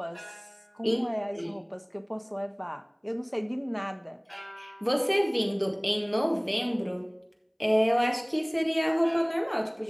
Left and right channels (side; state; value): both; identical; correlation 1.00